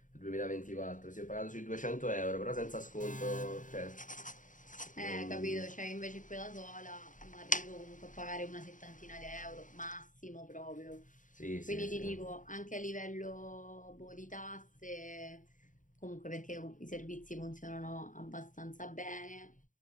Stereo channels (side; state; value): right; late; 0.38 ms